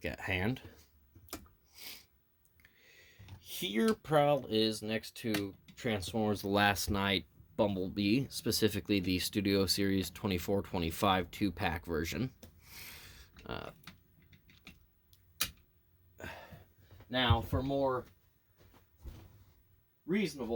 at hand. Here, Prowl is next to Transformers The Last Knight Bumblebee, specifically the Studio Series 24-25 2-pack version. Now, for more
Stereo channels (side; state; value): both; identical; correlation 1.00